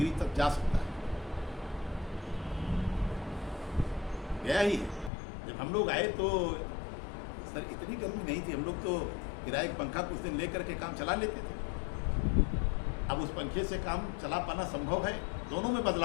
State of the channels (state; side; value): drops out; right; at 5.1 s